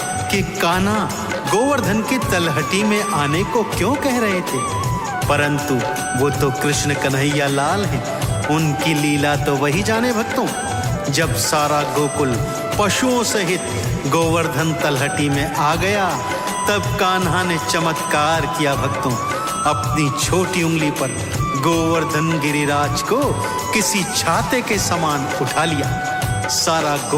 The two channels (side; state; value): both; identical; correlation 1.00